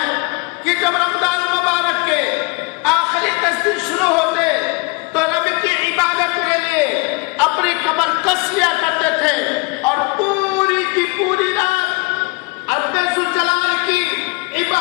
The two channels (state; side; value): quieter; right; 28.0 dB